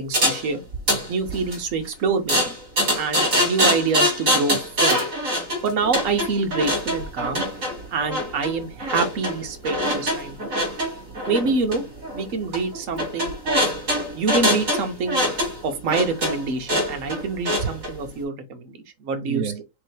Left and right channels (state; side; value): late; left; 3.9 ms